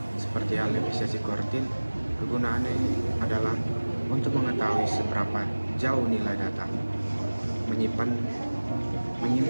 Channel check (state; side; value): inverted; both; correlation -1.00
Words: Seperti hal defisiasi kuartil, kegunaannya adalah untuk mengetahui seberapa jauh nilai data menyimpan